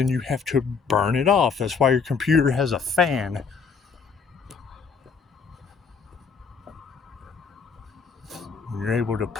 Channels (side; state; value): right; quieter; 5.5 dB